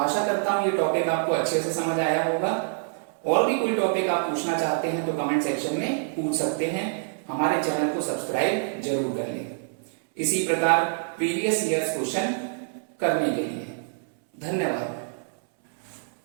करता हूं ये टॉपिक आपको अच्छे से समझ आया होगा। और भी कोई टॉपिक आप पूछना चाहते हैं तो कमेंट सेक्शन में पूछ सकते हैं। हमारे चैनल को सब्सक्राइब जरूर कर लें, इसी प्रकार प्रीवियस ईयर्स क्वेश्चन करने के लिए। धन्यवाद।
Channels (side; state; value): left; silent; 61 dB below the other